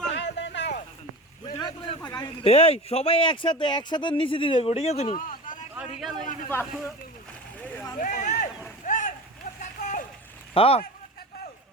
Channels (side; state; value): both; normal; correlation 0.32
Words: এই সবাই একসাথে নিচে দিয়ে যাবো ঠিক আছে নি হ্যাঁ